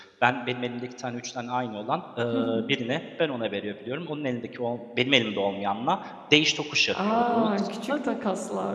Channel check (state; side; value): identical; both; correlation 1.00